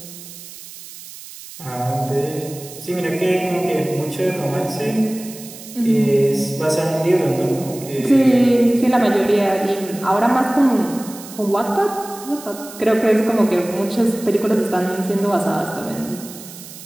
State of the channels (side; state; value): right; noise; hiss, 15 dB below the sound